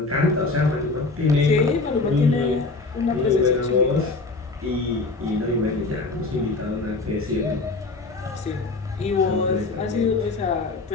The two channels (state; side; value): quieter; right; 3.6 dB